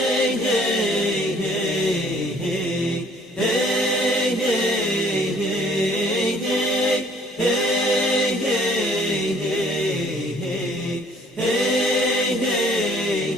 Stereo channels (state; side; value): normal; both; correlation 0.58